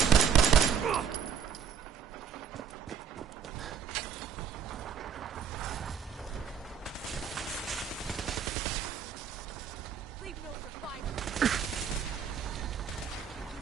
Leave no survivors!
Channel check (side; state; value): left; quieter; 7.2 dB